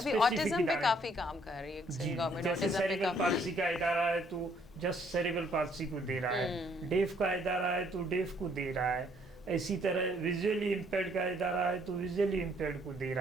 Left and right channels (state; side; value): normal; both; correlation 0.65